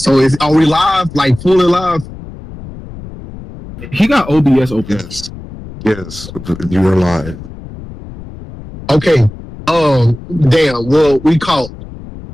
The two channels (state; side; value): noise; left; rumble, 14 dB below the sound